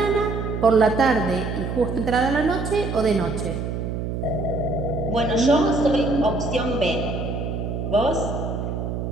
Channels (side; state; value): right; noise; hum, 4 dB below the sound